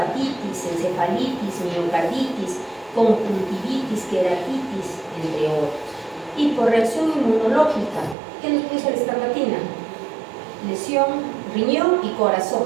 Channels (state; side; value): drops out; left; at 8.2 s